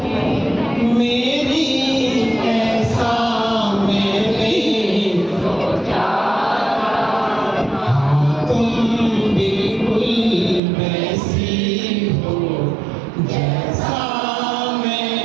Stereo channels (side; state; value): left; drops out; at 10.6 s